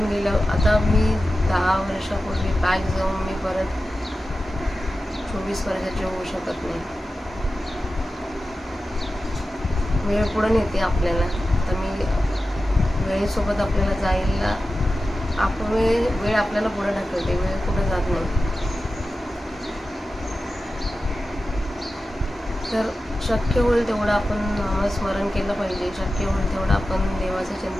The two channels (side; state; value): both; normal; correlation 0.93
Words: गेलं. आता मी 10 वर्षापूर्वी बॅक जाऊन मी परत 24 वर्षाची होऊ शकत नाही. वेळ पुढे नेते आपल्याला. तर मी वेळेसोबत आपल्याला जायला वेळ आपल्याला पुढे ढकलते, वेळ पुढे जात नाही. तर शक्य होईल तेवढं आपण नामस्मरण केलं पाहिजे, शक्य होईल तेवढं आपण देवाचं